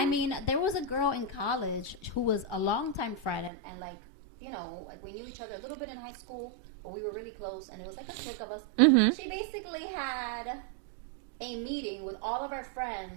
mean, there was a girl in college who was a longtime friend and like, like we knew each other a little bit in high school, but we were really close and it was like a clique of us. She basically had a meeting with all of our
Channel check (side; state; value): left; drops out; at 3.5 s